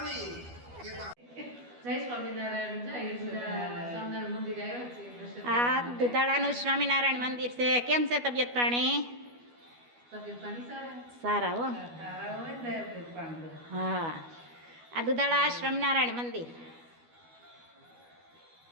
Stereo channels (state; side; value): late; left; 12 ms